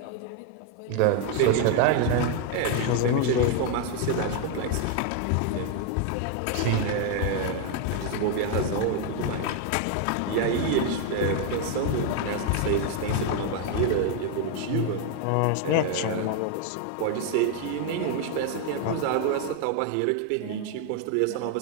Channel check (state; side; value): different; both; correlation 0.01